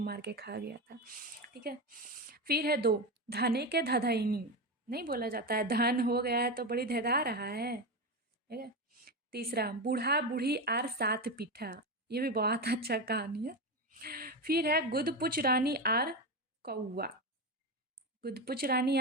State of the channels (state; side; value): normal; both; correlation 0.17